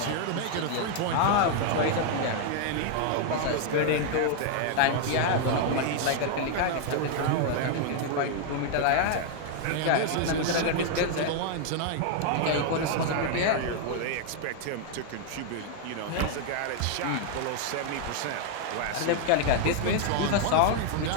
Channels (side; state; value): both; different; correlation 0.00